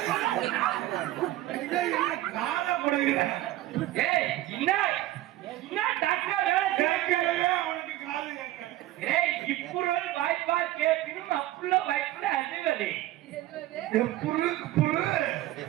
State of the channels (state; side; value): quieter; left; 15.5 dB